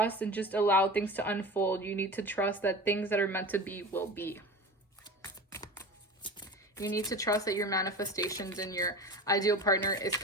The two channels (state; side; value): normal; both; correlation 0.32